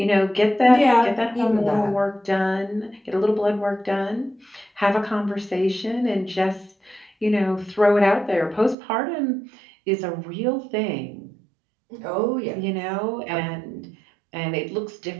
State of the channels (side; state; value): left; drops out; at 8.8 s